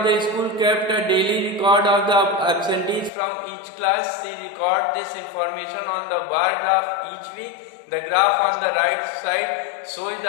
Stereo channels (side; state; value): right; drops out; at 3.1 s